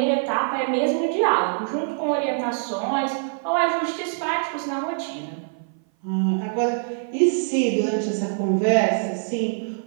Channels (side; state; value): left; silent; 57 dB below the other